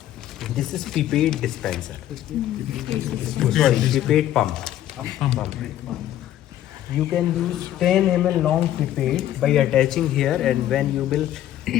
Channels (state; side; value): quieter; right; 12.4 dB